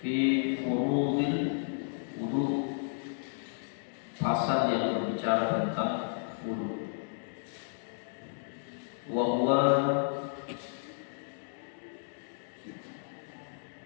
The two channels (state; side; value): silent; right; digital silence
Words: fi furudil wudu, pasal yang berbicara tentang wudu. Wa huwa